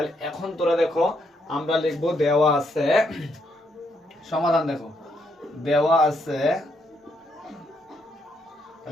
এখন তোরা দেখো আমরা লিখবো দেওয়া আছে সমাধান। দেখো দেওয়া আছে,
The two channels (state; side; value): normal; both; correlation 0.76